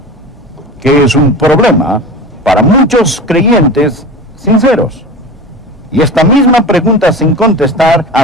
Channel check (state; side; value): normal; both; correlation 0.32